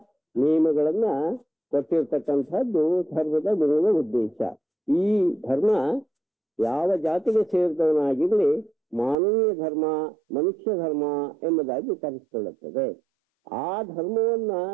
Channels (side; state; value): left; drops out; at 9.2 s